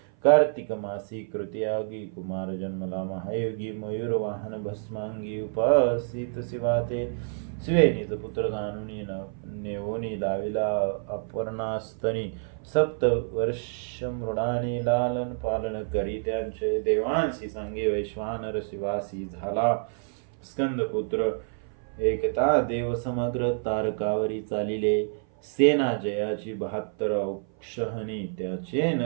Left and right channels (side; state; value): left; silent; 55 dB below the other